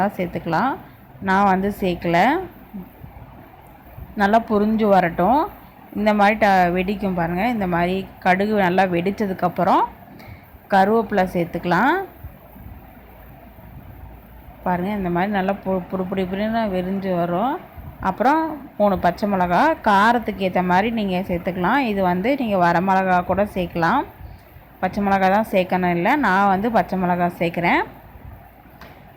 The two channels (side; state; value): both; identical; correlation 1.00